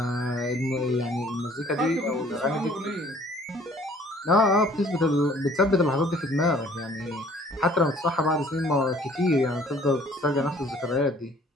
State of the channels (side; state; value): both; normal; correlation 0.56